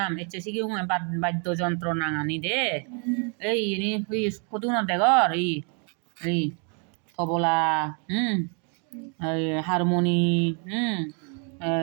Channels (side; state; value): left; quieter; 38.6 dB